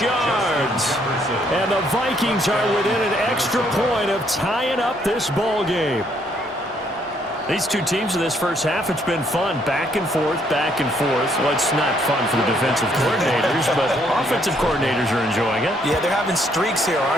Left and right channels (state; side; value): normal; both; correlation 0.69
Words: yards. And the Vikings are within an extra point of tying up this ball game. These two teams in this first half, it's been fun. Back and forth, back and forth. Well, it's not fun for the defensive coordinators, but offensive coordinators are enjoying it. Yeah, they're having streaks here,